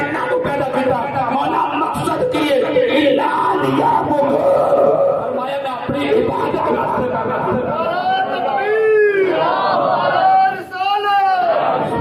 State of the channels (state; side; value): identical; both; correlation 1.00